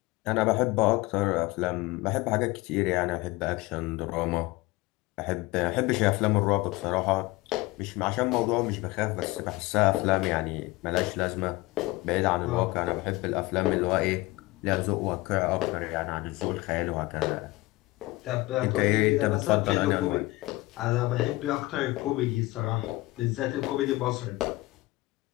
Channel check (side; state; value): right; quieter; 20.8 dB